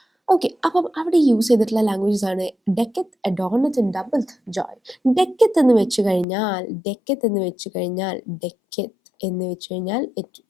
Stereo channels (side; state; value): right; drops out; at 6.2 s